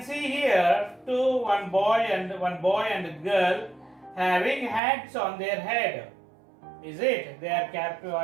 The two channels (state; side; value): drops out; left; at 4.8 s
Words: see here one boy and a girl having hats on their head. Is it? They